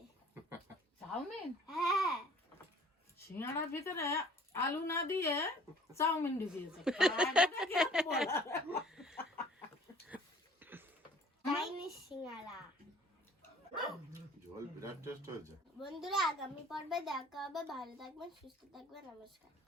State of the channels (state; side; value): normal; both; correlation 0.52